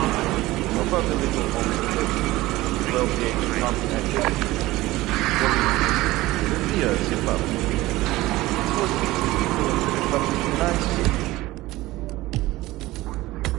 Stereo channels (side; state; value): left; quieter; 18.3 dB